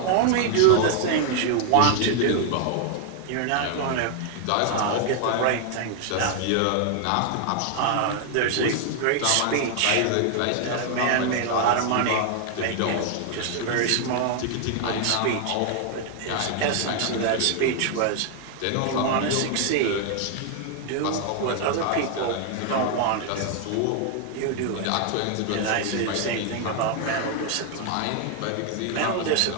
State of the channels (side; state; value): both; different; correlation 0.00